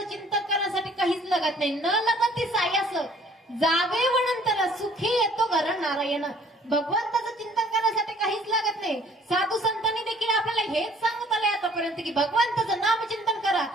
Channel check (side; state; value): both; normal; correlation 0.56